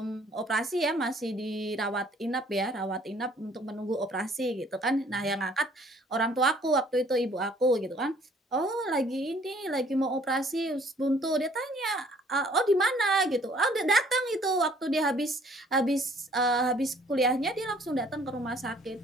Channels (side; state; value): both; normal; correlation 0.59